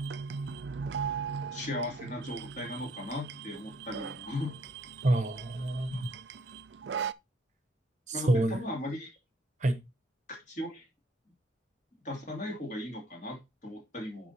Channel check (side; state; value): both; normal; correlation 0.64